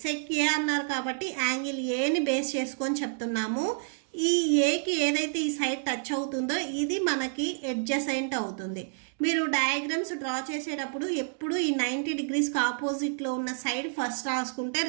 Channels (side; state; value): left; silent; digital silence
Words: sec A అన్నారు కాబట్టి యాంగిల్ ఏని బేస్ చేసుకొని చెప్తున్నాము. ఈ ఏకి ఏదైతే ఈ సైడ్ టచ్ అవుతుందో ఇది మనకి అడ్జసెంట్ అవుతుంది. మీరు డయాగ్రామ్స్ డ్రా చేసేటప్పుడు ఎప్పుడు ఈ 90 డిగ్రీస్కి ఆపోజిట్లో ఉన్న సైడ్ ఫస్ట్ రాసుకుంటే